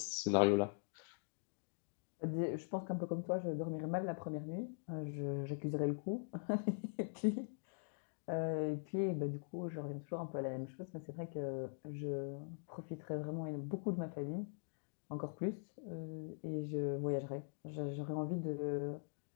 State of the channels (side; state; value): right; silent; digital silence